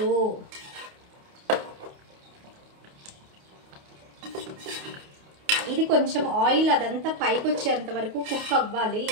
ఇది కొంచెం ఆయిల్ అదంతా పైకి వచ్చేంత వరకు కుక్ అవ్వాలి.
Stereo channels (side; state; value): left; late; 28 ms